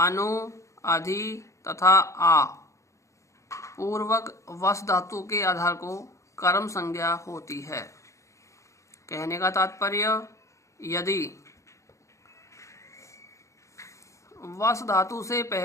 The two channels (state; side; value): late; right; 0.15 ms